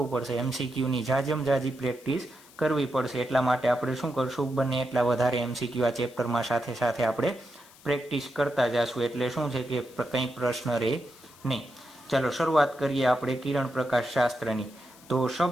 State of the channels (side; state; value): left; noise; hiss, 24 dB below the sound